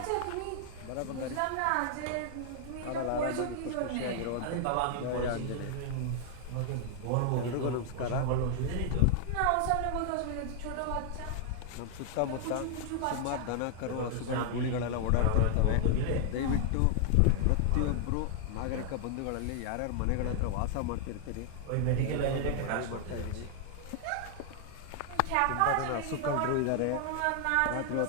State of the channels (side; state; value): both; different; correlation 0.00